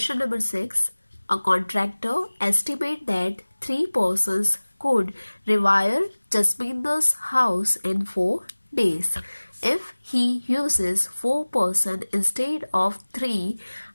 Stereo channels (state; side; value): inverted; both; correlation -1.00